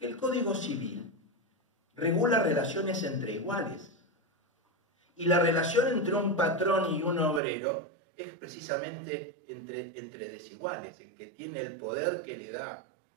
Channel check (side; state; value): left; drops out; at 7.4 s